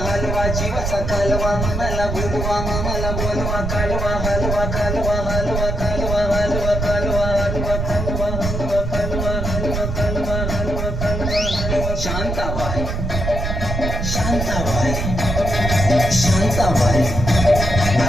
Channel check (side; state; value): right; noise; rumble, 2 dB below the sound